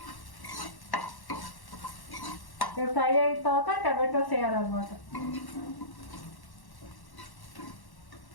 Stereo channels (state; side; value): late; right; 1.1 ms